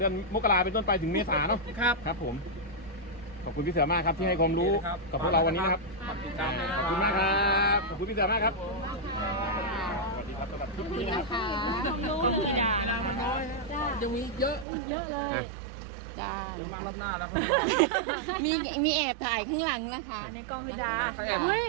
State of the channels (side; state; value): left; drops out; at 14.7 s